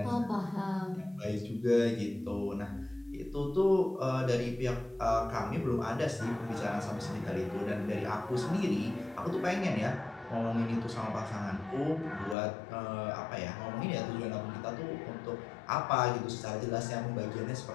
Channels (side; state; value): right; drops out; at 12.4 s